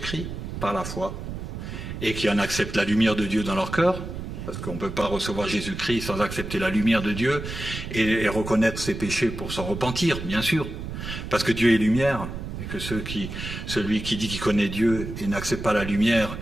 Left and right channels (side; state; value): right; noise; rumble, 7 dB below the sound